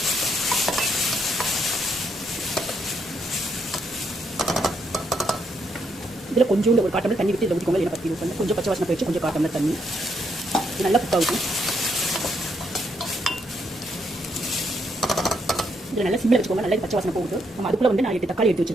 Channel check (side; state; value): both; normal; correlation 0.76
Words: இதில் கொஞ்சோண்டு ஒரு 1/4 டம்ளர் தண்ணி விட்டு இதில் ஊற்றிக்கோங்க. இல்லை பற்றி யூஸ் பண்ணி கொஞ்சம் பச்சை வாசனை போயிடுச்சு. கொஞ்சம் 1/4 டம்ளர் தண்ணி. இது நல்லா குக் ஆகும். இதில் நல்லா சிம்மில் வச்சுக்கோங்க. நல்லா பச்சை வாசனை போகுது. நம்ம அதுக்குள்ள வந்து நான் 8 தக்காளி எடுத்து